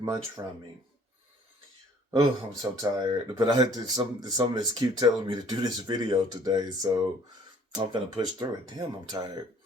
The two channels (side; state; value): both; normal; correlation 0.56